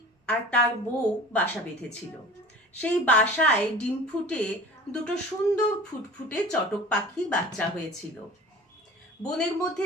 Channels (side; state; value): both; normal; correlation 0.41